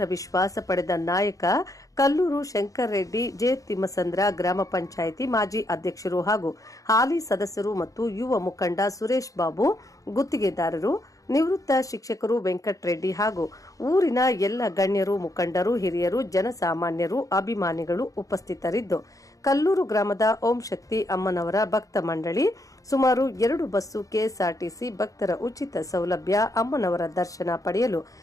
ವಿಶ್ವಾಸ ಪಡೆದ ನಾಯಕ ಕಲ್ಲೂರು ಶಂಕರ್ ರೆಡ್ಡಿ ಜೆ ತಿಮ್ಮಸಂದ್ರ ಗ್ರಾಮ ಪಂಚಾಯಿತಿ ಮಾಜಿ ಅಧ್ಯಕ್ಷರು ಹಾಗೂ ಹಾಲಿ ಸದಸ್ಯರು ಮತ್ತು ಯುವ ಮುಖಂಡ ಸುರೇಶ್ ಬಾಬು ಗುತ್ತಿಗೆದಾರರು ನಿವೃತ್ತ ಶಿಕ್ಷಕರು ವೆಂಕಟರೆಡ್ಡಿ ಹಾಗೂ ಊರಿನ ಎಲ್ಲ ಗಣ್ಯರು ಮುಖಂಡರು ಹಿರಿಯರು ಜನಸಾಮಾನ್ಯರು ಅಭಿಮಾನಿಗಳು ಉಪಸ್ಥಿತರಿದ್ದು ಕಲ್ಲೂರು ಗ್ರಾಮದ ಓಂ ಶಕ್ತಿ ಅಮ್ಮನವರ ಭಕ್ತ ಮಂಡಳಿ ಸುಮಾರು 2 ಬಸ್ಸು ಕೆಎಸ್ಆರ್ಟಿಸಿ ಭಕ್ತರ ಉಚಿತ ಸೌಲಭ್ಯ ಅಮ್ಮನವರ ದರ್ಶನ ಪಡೆಯಲು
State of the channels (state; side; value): late; right; 0.16 ms